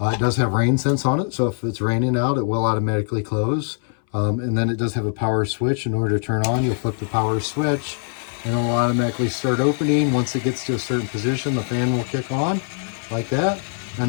does have rain sense on it, so if it's raining out, it will automatically close. And then it does have a power switch. In order to turn on, you'll flip the power switch, and it will automatically start opening. Once it gets to a certain position, the fan will kick on like that.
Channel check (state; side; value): silent; right; 61 dB below the other